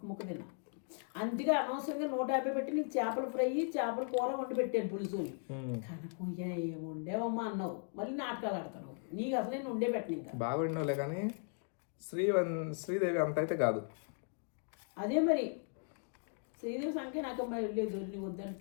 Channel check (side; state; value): right; silent; 53 dB below the other